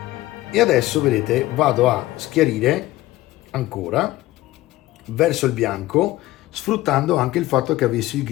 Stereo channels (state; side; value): quieter; right; 17.2 dB